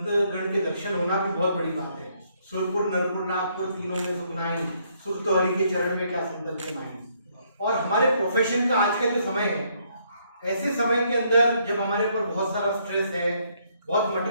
के दर्शन होना भी बहुत बड़ी बात है। सुरपुर नरपुर नागपुर तीनों में सुखनाई, सुर तो हरि के चरण में क्या सुंदर के मायने। और हमारे प्रोफेशन का आज का जो समय है, ऐसे समय के अंदर जब हमारे ऊपर बहुत सारा स्ट्रेस है, बहुत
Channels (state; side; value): inverted; both; correlation -0.70